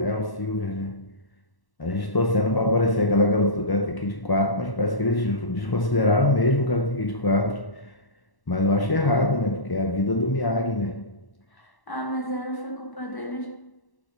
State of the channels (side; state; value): right; late; 1.1 ms